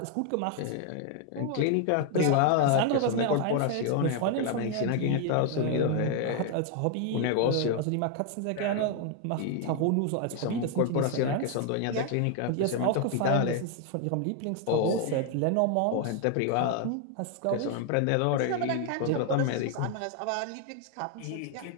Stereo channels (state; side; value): different; both; correlation 0.00